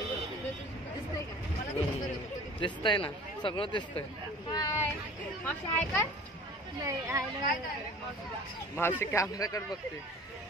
दिसतंय ना, सगळं दिसतंय. मावशी कॅमेराकडे बघते.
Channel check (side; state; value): both; normal; correlation 0.44